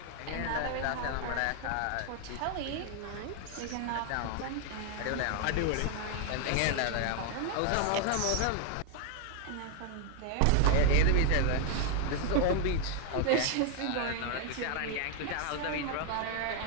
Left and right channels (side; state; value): both; different; correlation 0.00